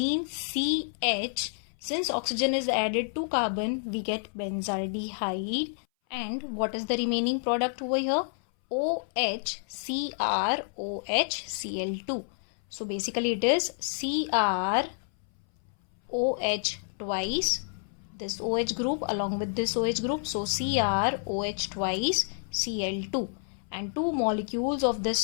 CH Since oxygen is added to carbon, we get benzaldehyde. And what is the remaining product over here? OH, CrOH, Cl2. So basically it is CrOH twice, this OH group along with this OH group. So CrOH twice, Cl2. And 2 molecules of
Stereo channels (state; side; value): silent; right; 58 dB below the other